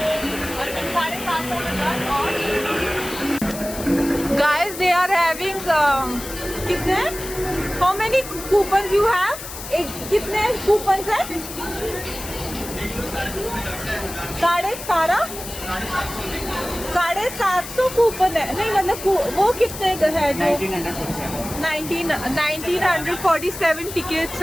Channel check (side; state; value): left; noise; hiss, 11 dB below the sound